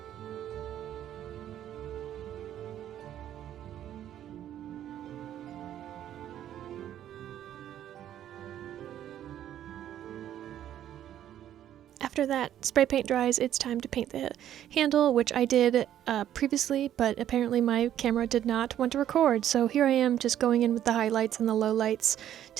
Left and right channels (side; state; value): left; quieter; 11.2 dB